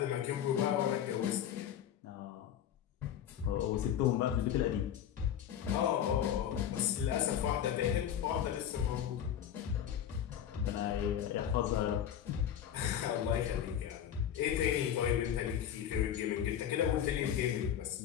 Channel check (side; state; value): right; quieter; 9.8 dB